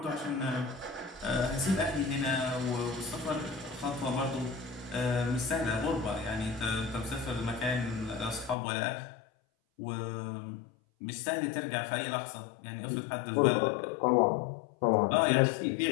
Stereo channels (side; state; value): right; drops out; at 8.6 s